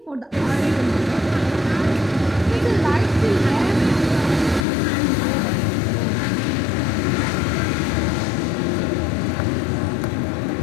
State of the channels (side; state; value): right; drops out; at 4.7 s